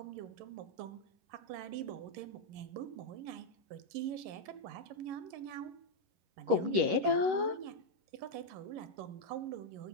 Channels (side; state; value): left; late; 11 ms